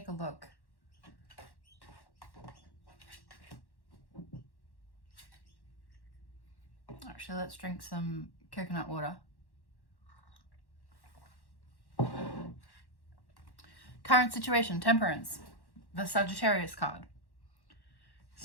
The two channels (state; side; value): late; right; 1.1 ms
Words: a look. Actually, let's drink some coconut water. Current situation, Temperance, the Sagittarius card.